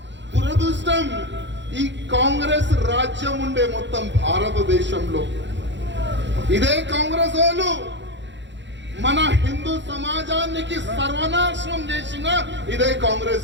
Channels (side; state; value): left; late; 0.52 ms